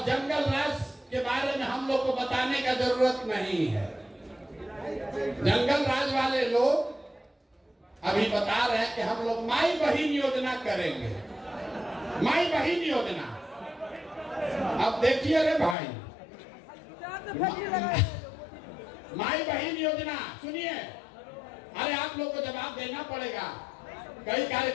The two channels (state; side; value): drops out; right; at 15.8 s